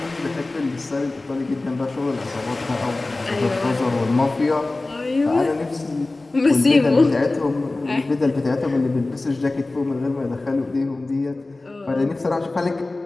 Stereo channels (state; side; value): quieter; right; 3.1 dB